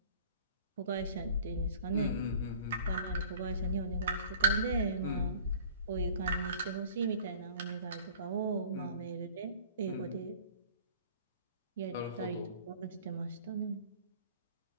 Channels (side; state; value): both; inverted; correlation -0.47